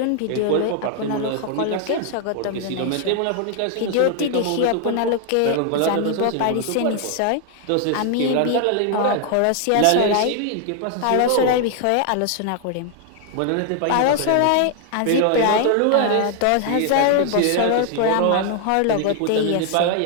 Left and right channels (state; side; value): different; both; correlation 0.00